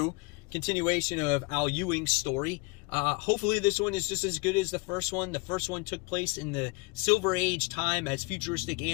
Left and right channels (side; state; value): right; quieter; 28.2 dB